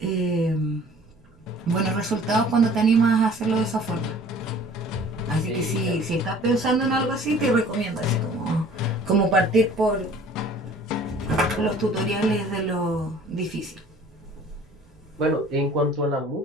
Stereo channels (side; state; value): both; normal; correlation 0.50